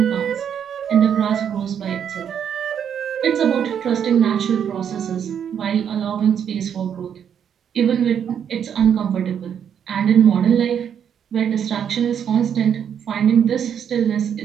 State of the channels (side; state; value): left; quieter; 8.4 dB